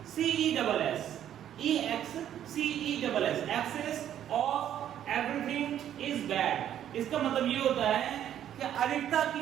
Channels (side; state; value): left; quieter; 10.7 dB